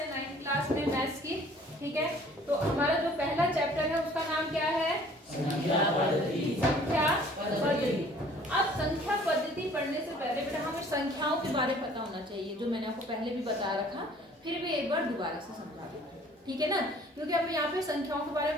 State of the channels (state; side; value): normal; both; correlation 0.54